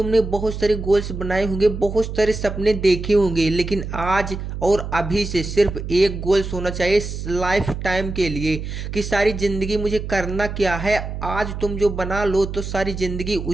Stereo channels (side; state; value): right; noise; hum, 6 dB below the sound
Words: बहुत सारे गोल्स बनाए होंगे, बहुत सारे सपने देखे होंगे, लेकिन आज और अभी से सिर्फ एक गोल्स होना चाहिए लाइफ टाइम के लिए, कि सारी जिंदगी मुझे करना क्या है। आज तुम जो बना लो तो सारी जिंदगी